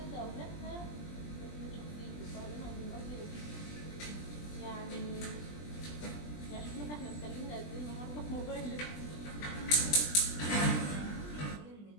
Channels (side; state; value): right; late; 20 ms